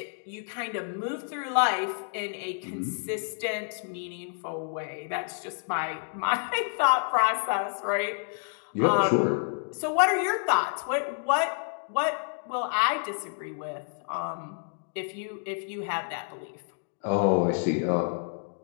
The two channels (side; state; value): right; silent; 59 dB below the other